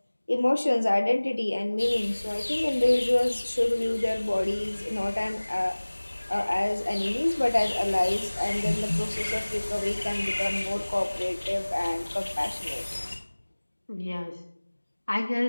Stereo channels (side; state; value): both; inverted; correlation -1.00